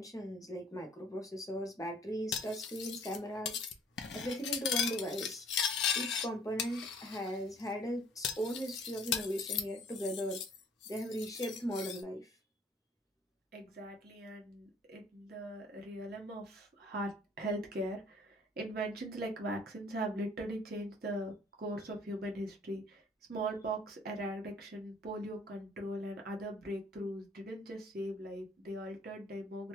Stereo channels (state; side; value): normal; both; correlation 0.56